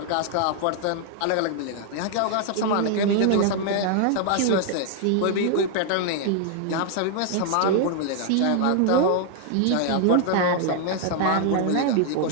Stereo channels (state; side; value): different; both; correlation 0.00